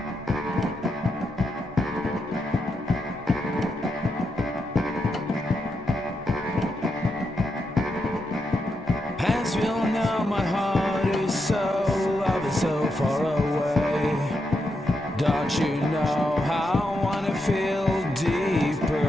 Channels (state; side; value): normal; both; correlation 0.83